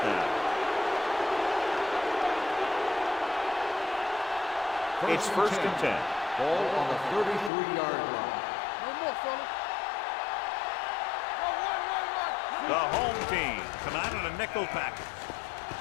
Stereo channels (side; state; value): right; drops out; at 7.5 s